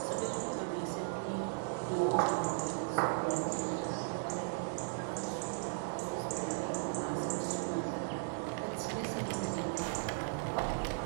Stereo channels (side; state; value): left; silent; digital silence